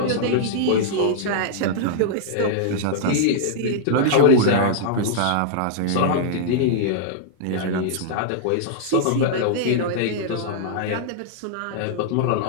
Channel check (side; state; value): both; different; correlation -0.02